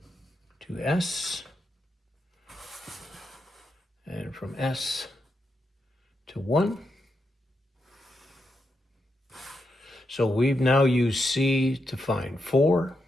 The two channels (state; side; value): normal; both; correlation 0.84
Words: to S, and from S to 1. So we've now used C to find 4,